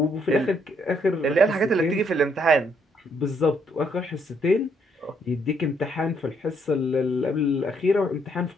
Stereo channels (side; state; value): both; normal; correlation 0.71